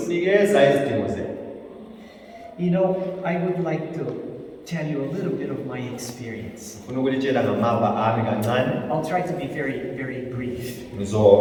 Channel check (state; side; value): identical; both; correlation 1.00